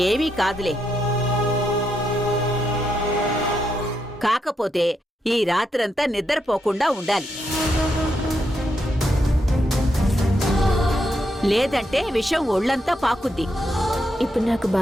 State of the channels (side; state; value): both; normal; correlation 0.81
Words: ఏమీ కాదులే. కాకపోతే ఈ రాత్రంతా నిద్రపోకుండా ఉండాలి. లేదంటే విషం ఒళ్ళంతా పాకుద్ది. ఇప్పుడు నాకు